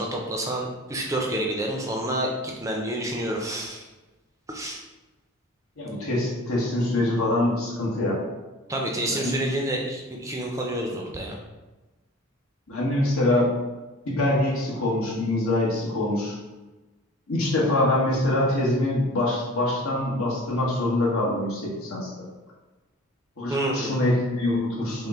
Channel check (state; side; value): normal; both; correlation 0.43